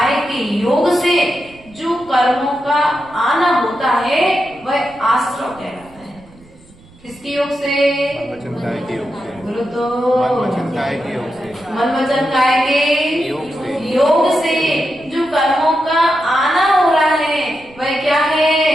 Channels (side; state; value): right; noise; rumble, 25 dB below the sound